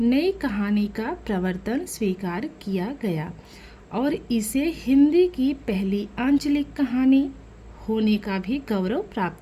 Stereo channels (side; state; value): both; identical; correlation 1.00